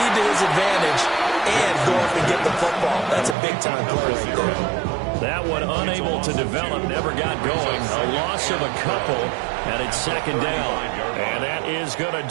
to his advantage and go up and get the football. That's a big-time play right there. That one unable to develop, never got going. A loss of a couple, and it's 2nd down. And that is going to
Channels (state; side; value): drops out; left; at 3.4 s